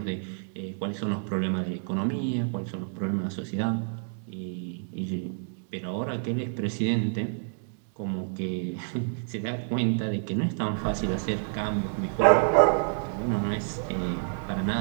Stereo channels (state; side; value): silent; left; digital silence